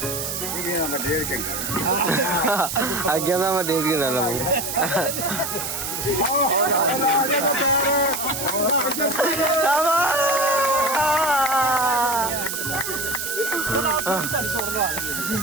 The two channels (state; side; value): noise; right; hiss, 4 dB below the sound